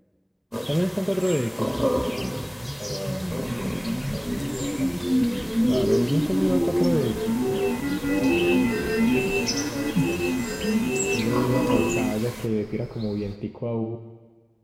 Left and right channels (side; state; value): both; identical; correlation 1.00